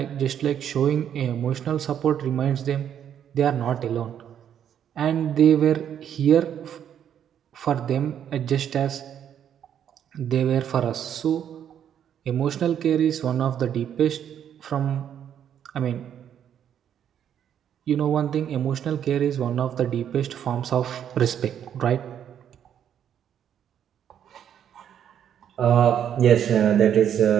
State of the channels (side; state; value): left; quieter; 9.3 dB